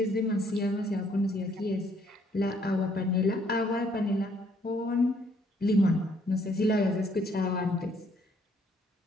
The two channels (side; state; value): both; normal; correlation 0.66